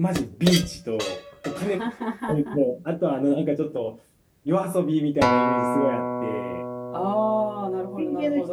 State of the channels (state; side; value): identical; both; correlation 1.00